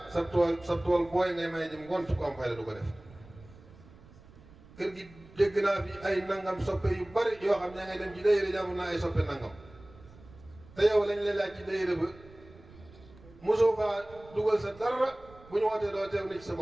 sa tool booy ngay may jëm ngont ku am fayda du ko def kër gi dégg naa fi ay nangam soppe yu bari yoo xam ne ngay dem ci dayre jàmm naa ay soppe nangam te yow lañ lay laaj ci dayre ba mosoo faa dugal sa dara bu ñu wootee doo teew ni ci sa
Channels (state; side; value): noise; right; rumble, 22 dB below the sound